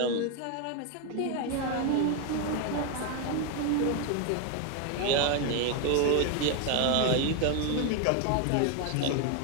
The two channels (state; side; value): different; both; correlation 0.01